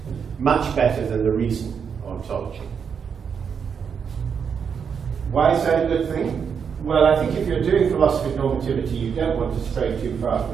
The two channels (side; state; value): left; quieter; 6.8 dB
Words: much better than the reason ontology. Why is that a good thing? Well, I think if you're doing philosophy of normativity, you don't want to stray too far